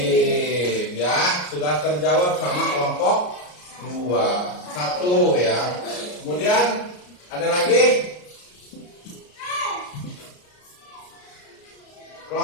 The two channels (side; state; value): right; late; 34 ms